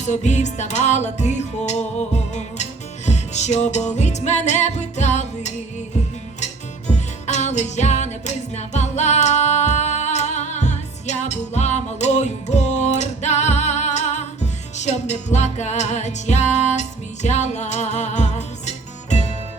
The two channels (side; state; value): left; quieter; 3.8 dB